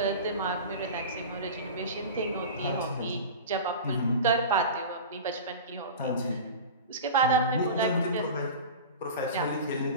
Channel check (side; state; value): both; inverted; correlation -0.31